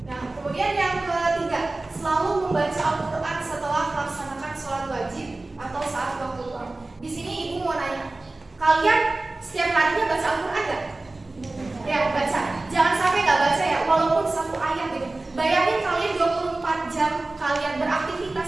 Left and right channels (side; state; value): left; quieter; 3.0 dB